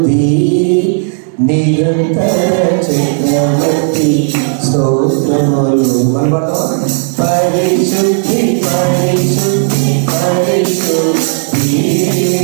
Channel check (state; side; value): silent; left; 65 dB below the other